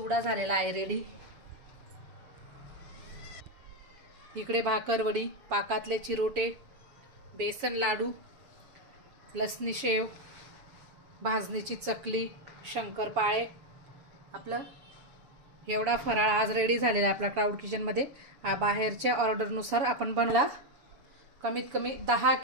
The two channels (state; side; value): late; left; 7.1 ms